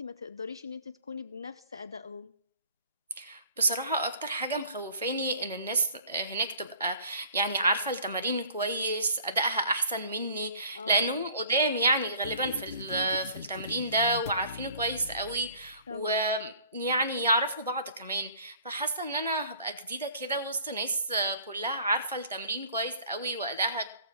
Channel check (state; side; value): inverted; both; correlation -0.51